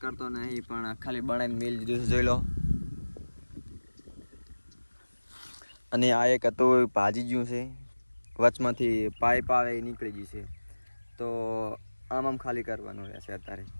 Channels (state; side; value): inverted; both; correlation -1.00